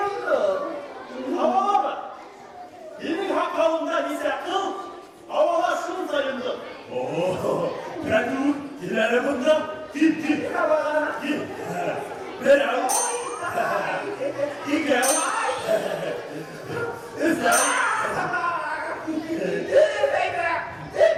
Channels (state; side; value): identical; both; correlation 1.00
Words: Havalar mı? Benim hakkımda ise kıl. Havalar şunu sayıldı. Ben dur. İleri bundan. Git. Havalar. Git. Ben al. Gel. Islan. Dürü beybe.